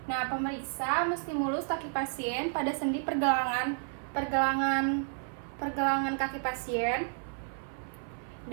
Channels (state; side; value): silent; left; 57 dB below the other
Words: Nah, pemeriksa menstimulus kaki pasien pada sendi pergelangan kaki pasien